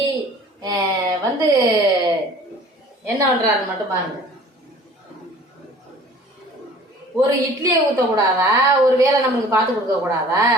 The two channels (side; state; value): both; normal; correlation 0.48